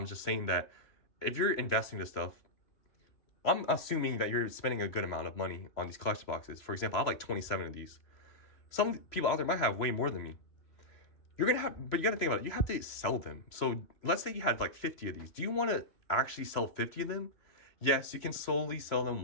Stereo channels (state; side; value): late; right; 3.0 ms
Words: just saying that if you're investing this stuff, I'm assuming that you're spending a good amount of money on these collection boxes. For example, I have like 27 of these. Some people out there might have way more than me. You're gonna have, but you gotta think about it. You have to sell them. So let's say you had like 50 of these. Do you want to actually sell 50 of them? Yes, you can slowly sell them